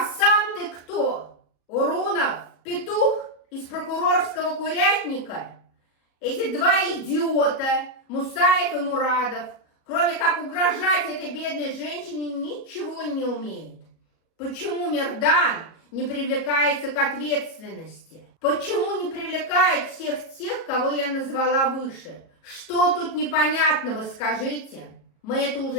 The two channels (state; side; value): late; right; 37 ms